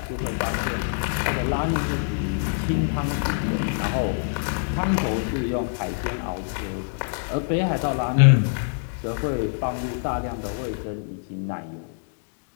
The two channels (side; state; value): right; silent; digital silence